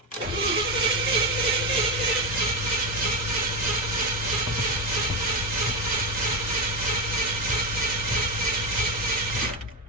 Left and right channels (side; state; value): both; normal; correlation 0.12